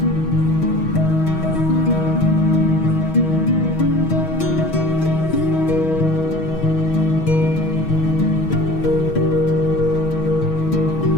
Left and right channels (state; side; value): late; right; 6.2 ms